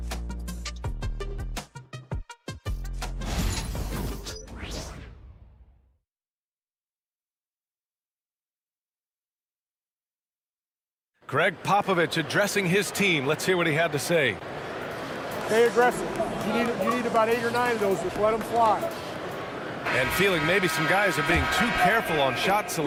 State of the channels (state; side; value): identical; both; correlation 1.00